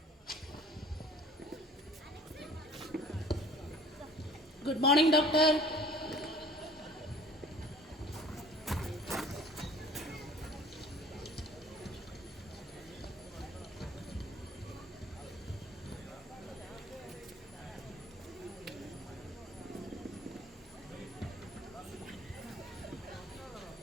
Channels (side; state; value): both; normal; correlation 0.50